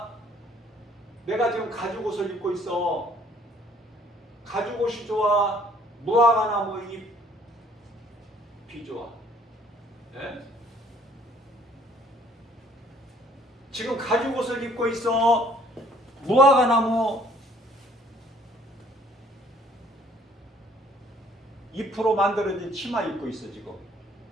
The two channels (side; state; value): both; normal; correlation 0.59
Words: 내가 지금 가죽옷을 입고 있어. 가죽옷이 좋아? 무화과나무 잎이 좋아? 네? 지금 가죽옷을 입고 있어? 무화과나무 잎으로 만들어진 치마 입고 있어. 지금